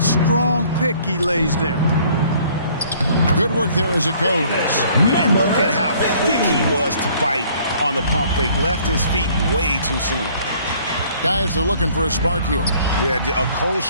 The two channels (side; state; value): both; inverted; correlation -0.58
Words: strong pick he lays there. Good work there as it goes. And look at how quick he was to bite on the pump fake. Left his feet way too soon. Guys, they're looking for a spark here. Yeah, a cold